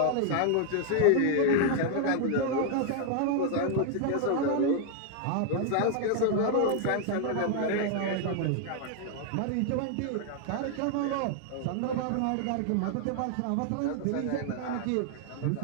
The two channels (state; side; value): different; both; correlation 0.00